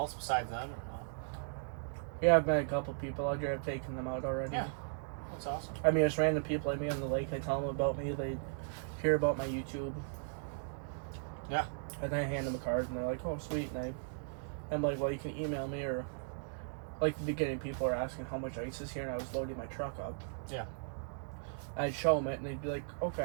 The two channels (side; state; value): left; silent; digital silence